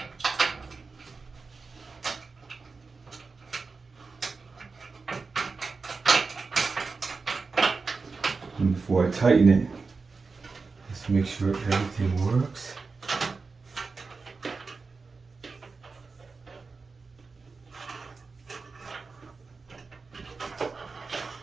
And before I tighten it, just make sure everything works.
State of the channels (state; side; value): quieter; left; 4.3 dB